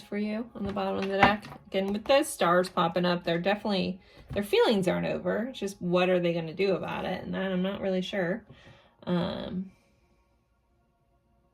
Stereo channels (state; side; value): identical; both; correlation 1.00